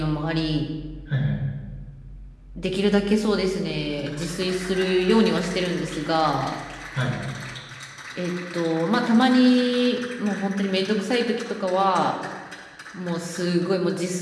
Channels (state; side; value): identical; both; correlation 1.00